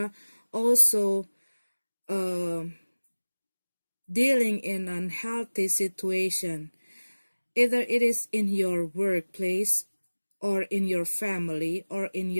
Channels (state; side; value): inverted; both; correlation -1.00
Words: also dealing in unhealthy situation. Either it is in your workplace, or in your family, or in